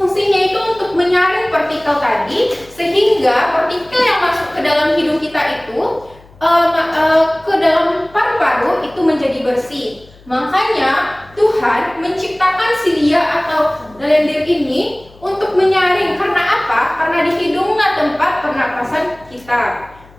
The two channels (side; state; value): left; noise; hum, 25 dB below the sound